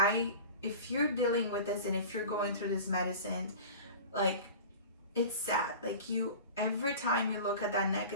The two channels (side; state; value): both; inverted; correlation -0.36